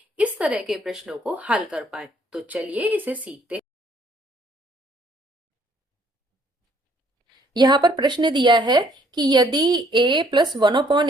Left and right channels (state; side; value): normal; both; correlation 0.64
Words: इस तरह के प्रश्नों को हल कर पाए। तो चलिए इसे सीखते हैं। यहाँ पर प्रश्न दिया है कि यदि a plus one upon